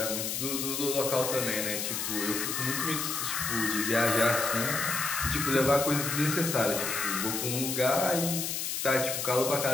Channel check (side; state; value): left; noise; hiss, 2 dB below the sound